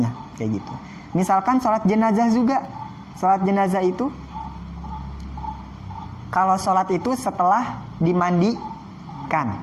kayak gitu. Misalkan sholat jenazah juga. Sholat jenazah itu, kalau sholat itu setelah dimandikan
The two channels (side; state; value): both; identical; correlation 1.00